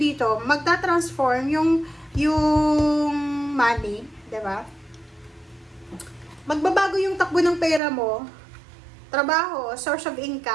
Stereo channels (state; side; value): drops out; left; at 7.8 s